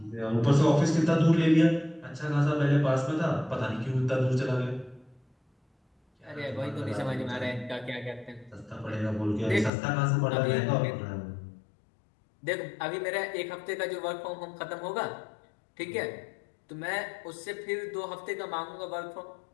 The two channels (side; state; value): right; drops out; at 9.7 s